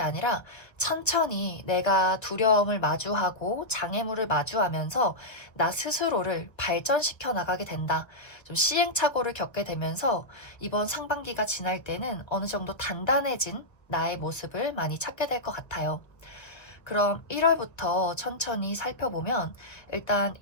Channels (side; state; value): right; late; 1.2 ms